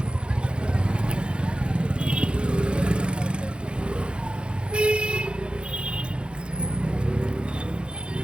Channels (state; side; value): late; left; 0.054 ms